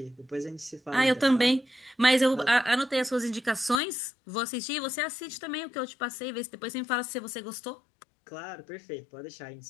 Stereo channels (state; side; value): drops out; right; at 3.8 s